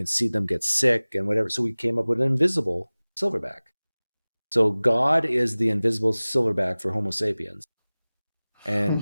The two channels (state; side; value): inverted; both; correlation -0.99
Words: see them get sick and whatever. So we came up with an invisible silverback. So God is the invisible silverback for Homo sapiens.